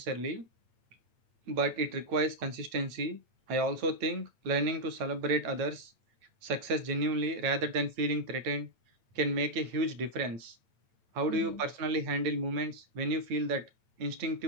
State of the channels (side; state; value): left; late; 9.2 ms